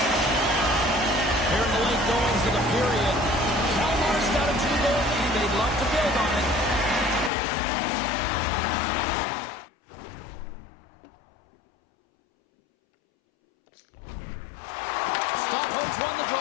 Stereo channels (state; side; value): drops out; right; at 7.3 s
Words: Here in the late goings of the period, Kalmar's got a 2-goal lead. They'd love to build on it. Stockholm's won the